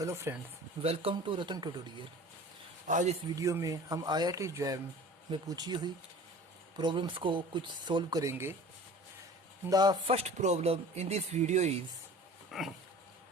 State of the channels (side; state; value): both; normal; correlation 0.42